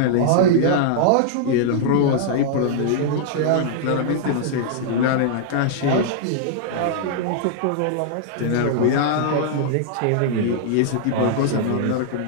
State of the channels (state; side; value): different; both; correlation -0.01